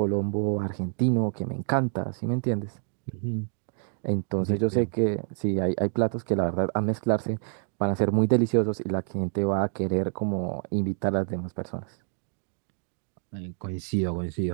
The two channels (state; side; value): silent; left; 60 dB below the other